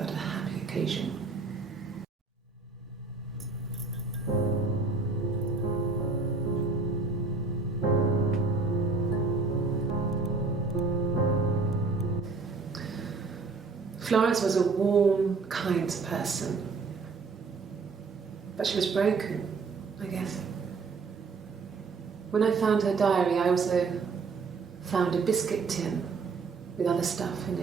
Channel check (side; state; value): left; quieter; 4.3 dB